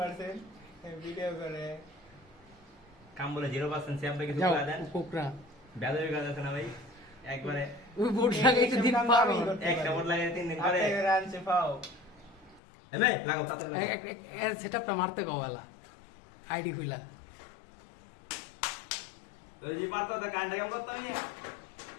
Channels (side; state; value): right; drops out; at 12.6 s